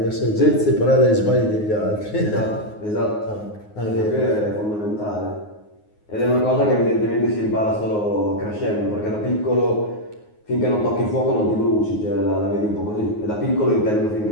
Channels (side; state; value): right; late; 9.5 ms